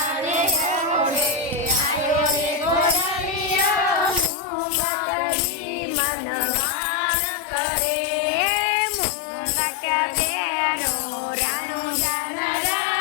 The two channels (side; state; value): right; drops out; at 4.3 s